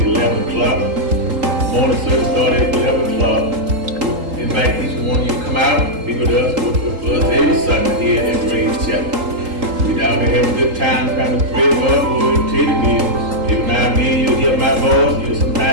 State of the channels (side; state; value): left; late; 3.8 ms